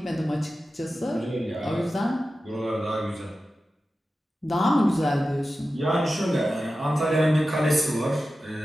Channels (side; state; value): both; normal; correlation 0.93